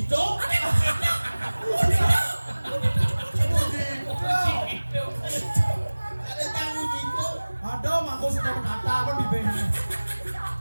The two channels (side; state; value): both; inverted; correlation -1.00